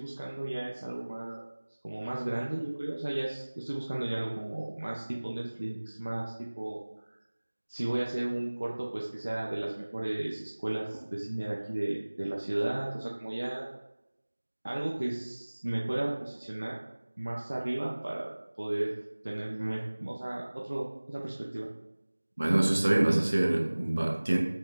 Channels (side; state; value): both; inverted; correlation -1.00